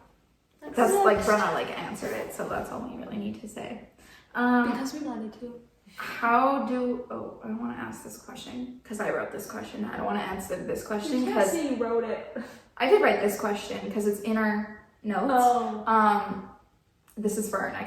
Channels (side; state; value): both; identical; correlation 1.00